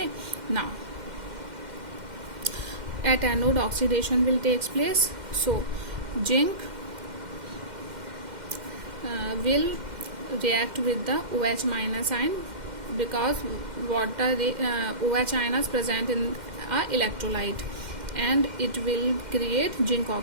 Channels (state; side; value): late; left; 2.1 ms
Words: now at anode oxidation will takes place. So zinc will react with the OH minus ion because water OH ion is present in a electrolyte, and it will create zinc